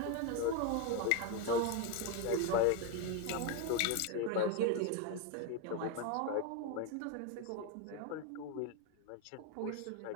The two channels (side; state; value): both; different; correlation 0.02